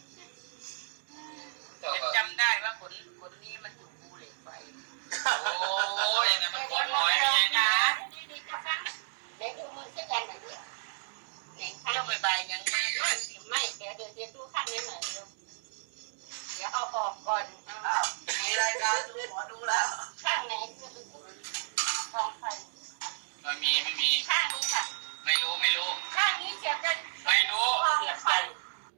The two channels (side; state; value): left; silent; digital silence